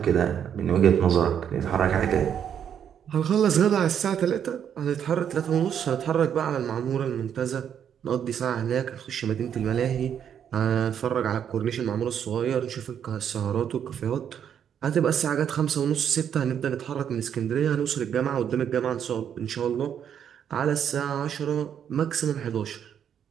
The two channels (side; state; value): left; quieter; 8.7 dB